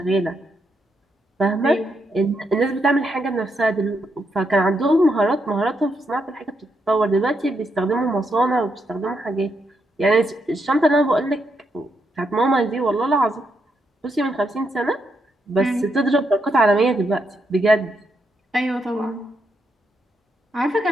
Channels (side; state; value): both; normal; correlation 0.80